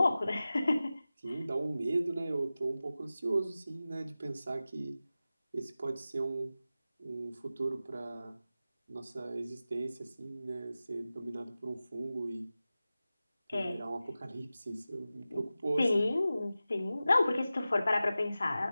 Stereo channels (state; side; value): inverted; both; correlation -0.95